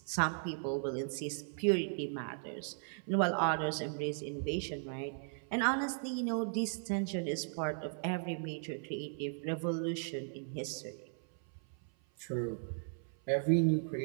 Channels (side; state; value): left; silent; 53 dB below the other